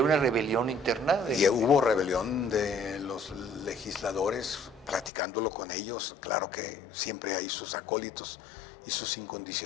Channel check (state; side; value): drops out; right; at 5.1 s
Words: una rebelión interna? Y hubo rebelión de los legisladores, platicándolo con ellos. Claro que siempre hay sus acólitos y sus